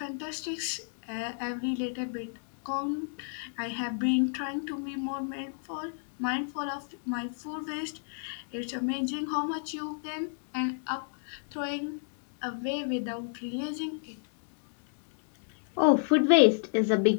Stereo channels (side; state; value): right; silent; digital silence